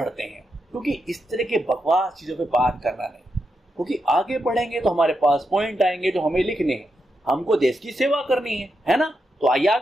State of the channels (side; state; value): both; normal; correlation 0.85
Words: हैं, क्योंकि इस तरह के बकवास चीजों पे बात करना नहीं, क्योंकि आगे बढ़ेंगे तो हमारे पास पॉइंट आएंगे जो हमें लिखने हैं, हमको देश की सेवा करनी है ना। तो आइए